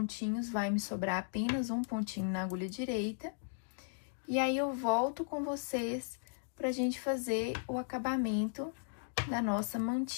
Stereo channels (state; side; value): silent; right; digital silence